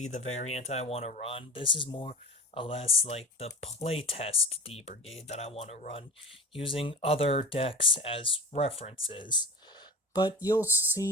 the variant I want to run. This is more or less like the playtest D Brigade that I want to run, using other decks as references. But you'll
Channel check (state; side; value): normal; both; correlation 0.32